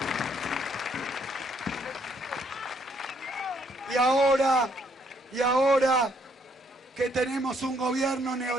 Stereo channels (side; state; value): both; normal; correlation 0.69